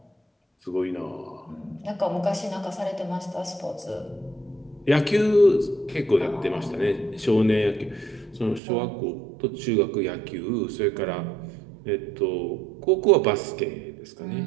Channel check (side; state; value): left; drops out; at 8.6 s